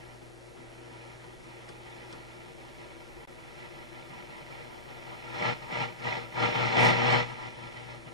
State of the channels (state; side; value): normal; both; correlation -0.17